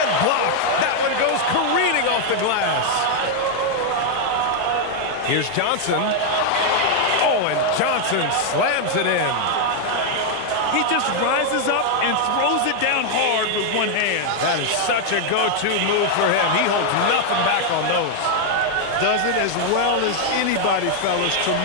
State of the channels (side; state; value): both; different; correlation 0.00